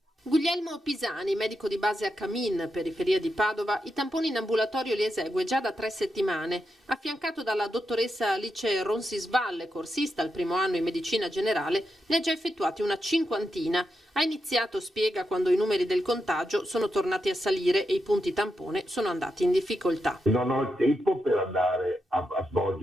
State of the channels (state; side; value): normal; both; correlation 0.86